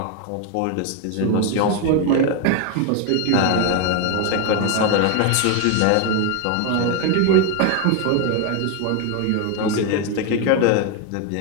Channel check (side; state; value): both; different; correlation 0.01